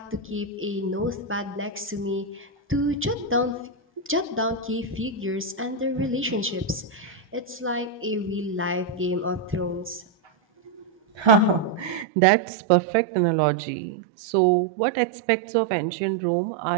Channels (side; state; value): left; drops out; at 12.1 s